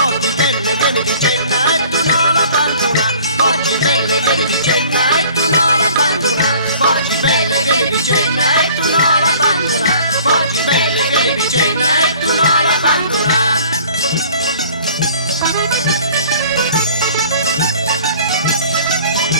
belle vieni di cena e tu non la abbandona, porti belle vieni di cena e tu non la abbandona, porti belle vieni di cena e tu non la abbandona, porti belle vieni di cena e tu non la abbandona.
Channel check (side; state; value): both; inverted; correlation -0.51